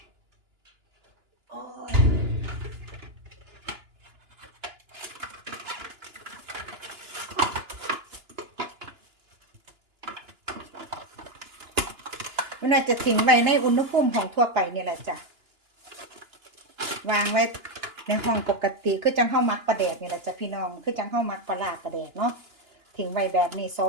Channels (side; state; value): left; late; 2.9 ms